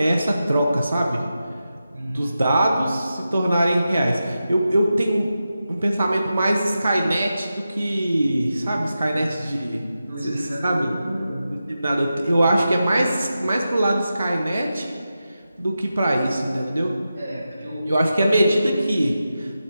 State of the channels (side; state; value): both; inverted; correlation -0.90